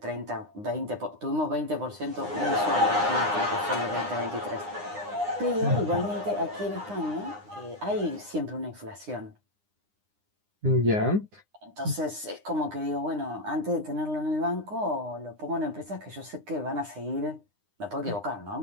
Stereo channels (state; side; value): late; left; 9.8 ms